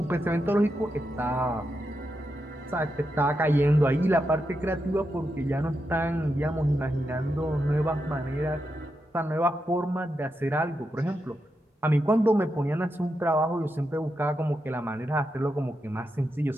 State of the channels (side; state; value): both; normal; correlation 0.86